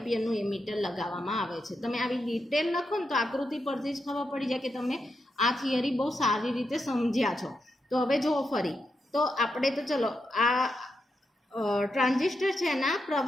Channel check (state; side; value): normal; both; correlation 0.84